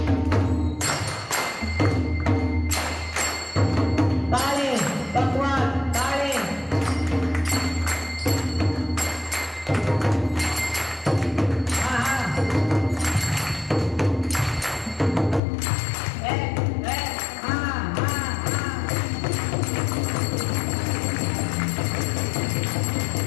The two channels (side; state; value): right; drops out; at 15.4 s